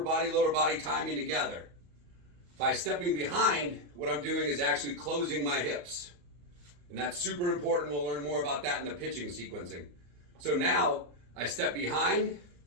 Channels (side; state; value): left; late; 34 ms